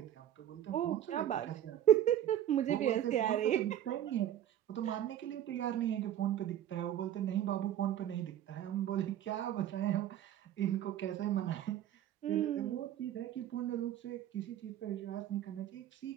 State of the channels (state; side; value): quieter; left; 11.4 dB